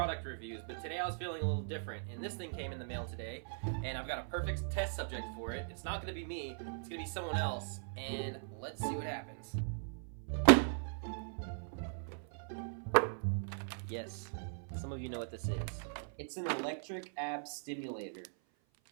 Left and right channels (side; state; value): left; silent; 52 dB below the other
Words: reviews, but today I was feeling a little different, and this thing came in the mail today, and I've got a perfect test subject for it. It's not going to be me, it's going to be someone else, and let's see what happens. Yes, some of you know what this is. It's an electric ab stimulator.